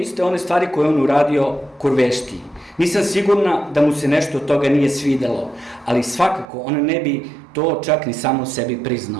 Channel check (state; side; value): drops out; left; at 6.5 s